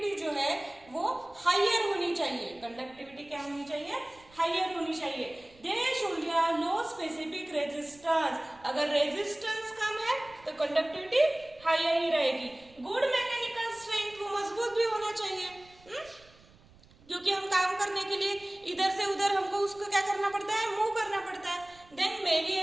जो है वो हायर होनी चाहिए। कंडक्टिविटी क्या होनी चाहिए? हायर होनी चाहिए। They should have low specific resistance. अगर रेजिस्टेंस कम है तो कंडक्टिविटी हायर ही रहेगी। गुड मैकेनिकल स्ट्रेंथ, वो मजबूत भी होना चाहिए, क्योंकि हम काम करने के लिए इधर से उधर हमको उसको क्या करना पड़ता है? मूव करना पड़ता है। देन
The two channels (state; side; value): noise; right; rumble, 26 dB below the sound